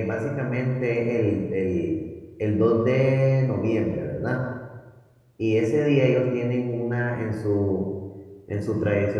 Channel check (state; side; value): identical; both; correlation 1.00